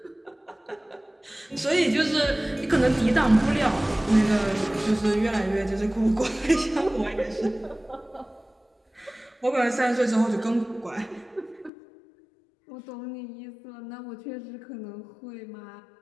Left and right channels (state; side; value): drops out; right; at 11.7 s